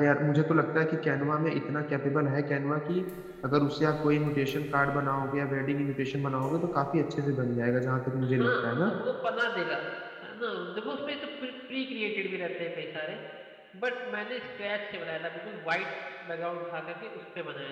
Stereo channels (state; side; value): identical; both; correlation 1.00